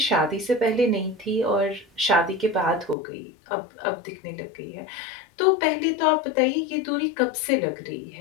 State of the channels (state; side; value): drops out; right; at 3.0 s